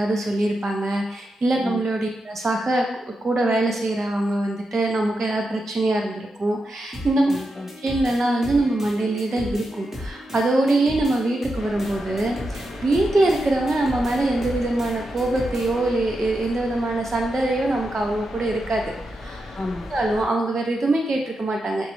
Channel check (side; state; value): both; normal; correlation 0.87